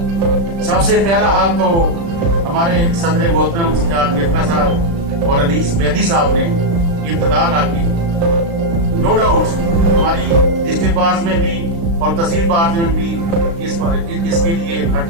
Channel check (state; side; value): late; left; 35 ms